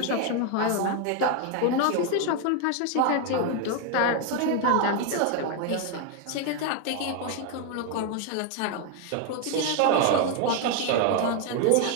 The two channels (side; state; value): both; different; correlation 0.01